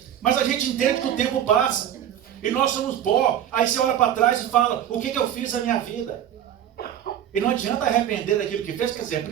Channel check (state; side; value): quieter; left; 10.5 dB